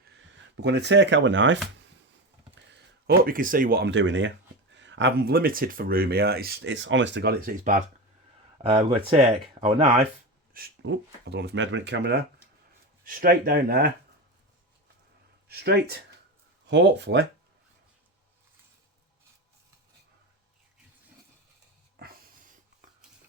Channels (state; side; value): normal; both; correlation 0.21